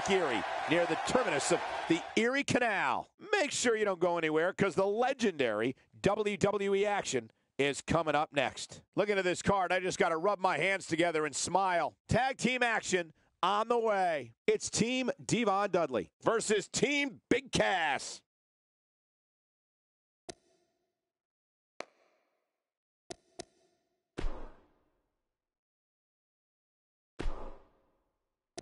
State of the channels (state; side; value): identical; both; correlation 1.00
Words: Erie, near the terminus of the Erie Canal. Make sure you don't go anywhere, because the legendary WWE action is coming up next. Looking at this card, I just got to rub my hands together and smile. Tag team action on the way. It's Team Devon Dudley versus Team Big Cass.